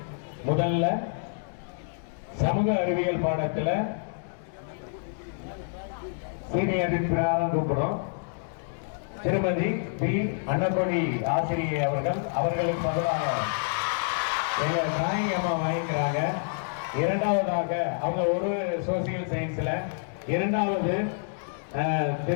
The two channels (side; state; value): right; silent; digital silence